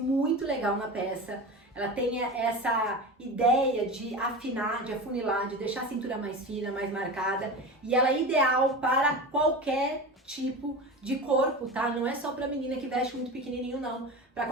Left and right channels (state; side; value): normal; both; correlation 0.28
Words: legal na peça. Ela tem essa ideia de afinar, de afunilar, de deixar a cintura mais fina, mais marcada. E ela é ideal para qualquer tipo de corpo, tá? Não é só para menina que veste muito pequenininho, não. Para